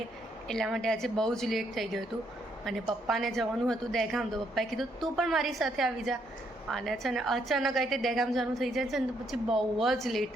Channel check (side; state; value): both; normal; correlation 0.73